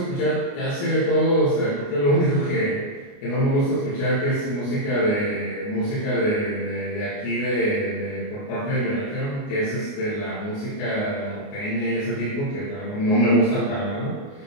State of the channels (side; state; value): right; late; 29 ms